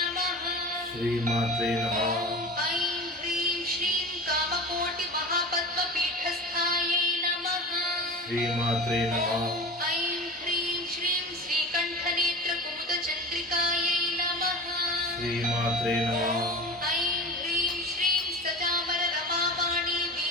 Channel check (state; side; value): normal; both; correlation 0.32